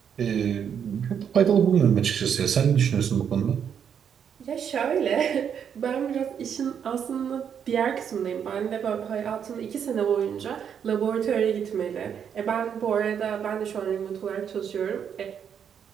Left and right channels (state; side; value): quieter; left; 8.0 dB